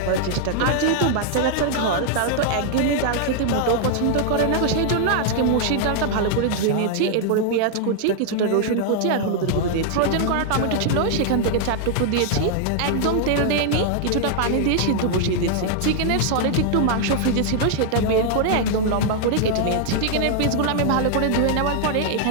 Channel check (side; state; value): both; different; correlation 0.00